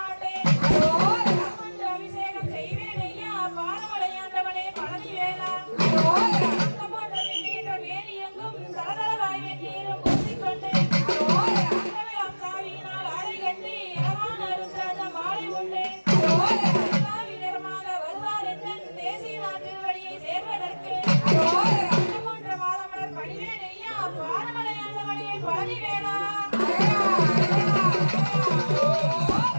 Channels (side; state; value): both; inverted; correlation -1.00